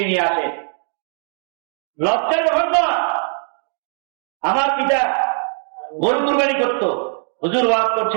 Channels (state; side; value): silent; left; digital silence